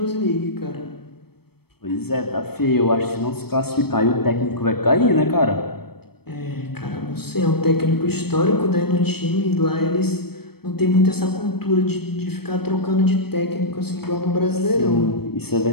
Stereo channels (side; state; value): right; late; 0.96 ms